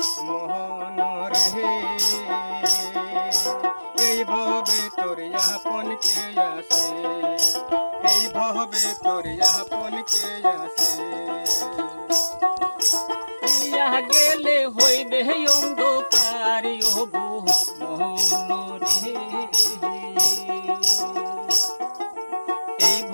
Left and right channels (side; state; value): both; inverted; correlation -1.00